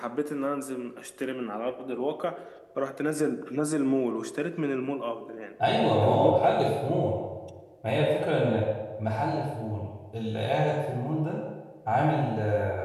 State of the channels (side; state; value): both; identical; correlation 1.00